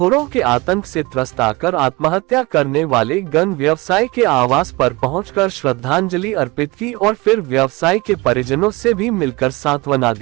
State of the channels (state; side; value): quieter; left; 23.8 dB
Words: के आतंक से त्रस्त आकर आत्महत्या करने वाले गन व्यवसायी के आवास पर पहुंचकर श्रद्धांजलि अर्पित की और फिर व्यवसायी के परिजनों से भी मिलकर सांत्वना